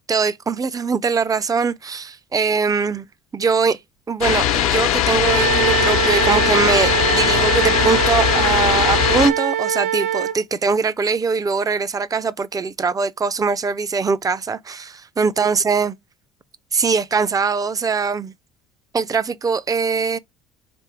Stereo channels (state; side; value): normal; both; correlation 0.31